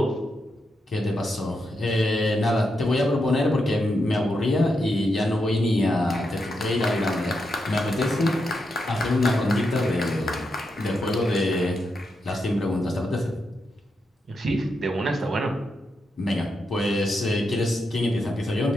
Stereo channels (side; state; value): both; normal; correlation 0.84